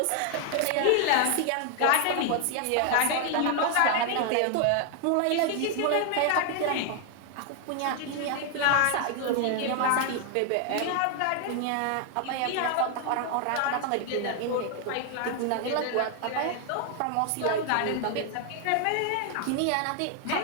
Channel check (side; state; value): both; different; correlation 0.00